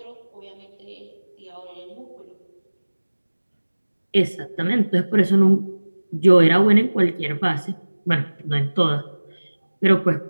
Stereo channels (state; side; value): inverted; both; correlation -1.00